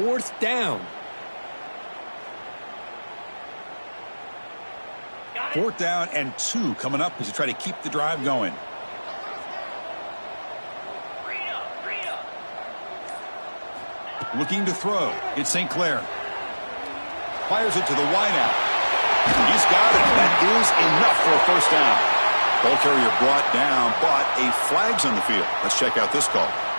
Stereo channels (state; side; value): inverted; both; correlation -1.00